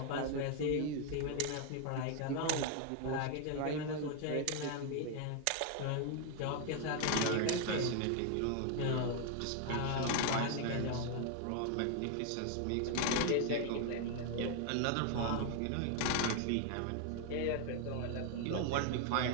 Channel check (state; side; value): different; both; correlation 0.00